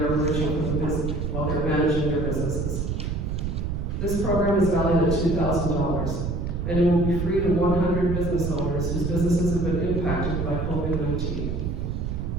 emerging from the business, while they're managing their businesses. This program is valued at $2,000, and it will be free to 100 business owners whose businesses have been impacted by COVID-19.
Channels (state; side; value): noise; right; rumble, 2 dB below the sound